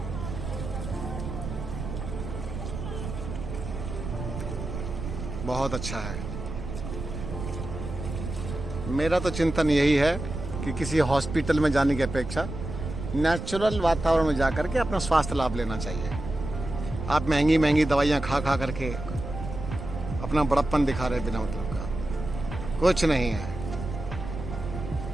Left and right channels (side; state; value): right; noise; rumble, 7 dB below the sound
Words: बहुत अच्छा है। मेरा तो चिंतन यही है कि किसी हॉस्पिटल में जाने की अपेक्षा नेचुरल वातावरण में जाकर के अपना स्वास्थ्य लाभ लेना चाहिए। आप महंगी महंगी दवाइयाँ खा खा करके अपना बड़प्पन दिखा रहे बिना मतलब का। कुछ नहीं है।